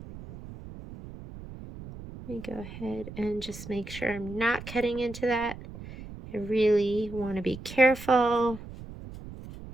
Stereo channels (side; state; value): right; noise; rumble, 13 dB below the sound